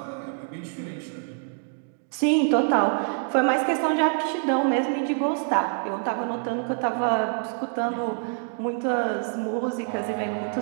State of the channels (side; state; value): left; silent; 61 dB below the other